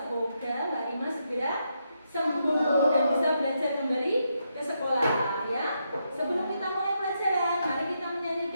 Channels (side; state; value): both; inverted; correlation -0.81